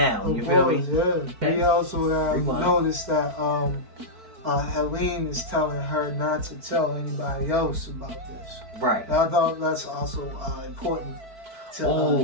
You feel me? We also noticed that Helene is telling her not to tell anybody else about this. Right. And I thought that's also important. To,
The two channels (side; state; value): left; late; 4.5 ms